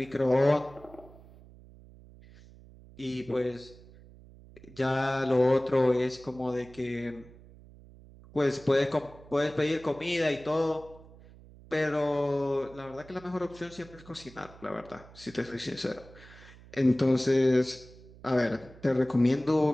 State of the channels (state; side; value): noise; right; hum, 21 dB below the sound